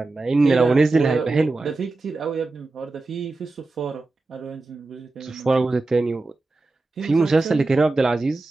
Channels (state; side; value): quieter; left; 3.3 dB